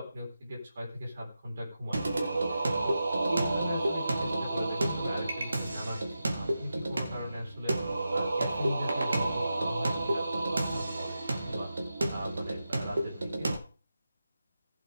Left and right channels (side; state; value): both; inverted; correlation -0.90